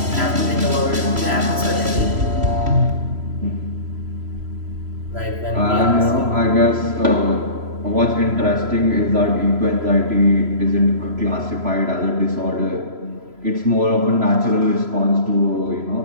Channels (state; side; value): late; left; 3.0 ms